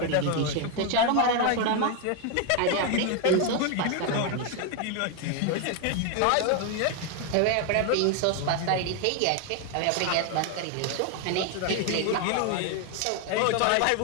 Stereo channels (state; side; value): different; both; correlation 0.01